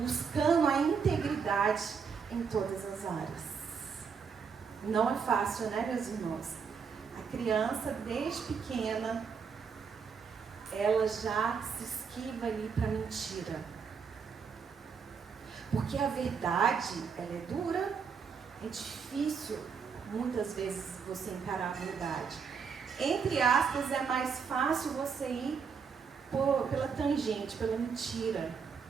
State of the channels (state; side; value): quieter; left; 6.1 dB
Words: a integridade em todas as áreas. Não é fácil, né, meus irmãos? A criança, desde pequena, ela já se esquiva ali para a mentira. Porque a verdade, ela é dura, é difícil, muitas vezes, você encarar a verdade. Entre aspas, é mais fácil você ir pela tangente, pela mentira,